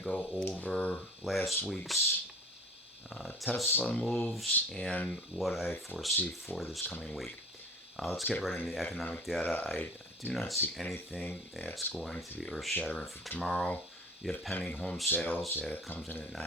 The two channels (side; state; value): both; normal; correlation 0.44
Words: go over last week's Tesla moves and what I foresee for this coming week. Let's get right into the economic data. I do not see anything that's going to be earth shattering for tomorrow. You have pending home sales that comes in at